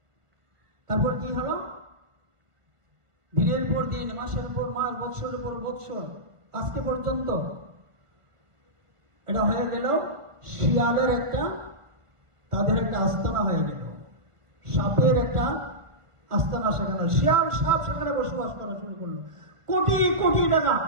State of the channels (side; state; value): left; late; 1.5 ms